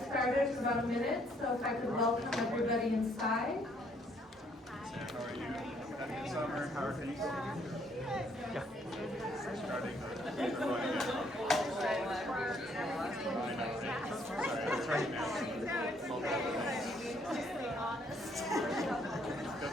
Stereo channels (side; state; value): both; normal; correlation 0.67